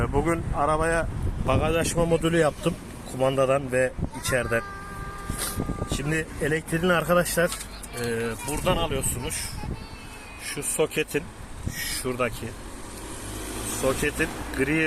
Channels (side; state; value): both; identical; correlation 1.00